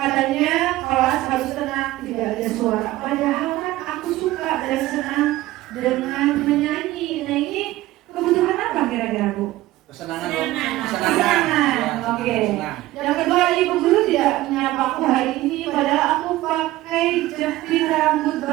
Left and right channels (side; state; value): left; quieter; 16.7 dB